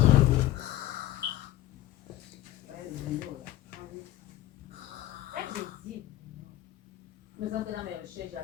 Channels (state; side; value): quieter; right; 14.7 dB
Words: Mais dans mes recherches,